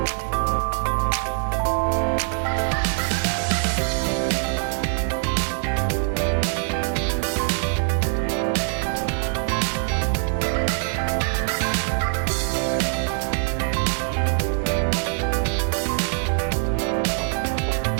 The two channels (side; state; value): left; silent; 62 dB below the other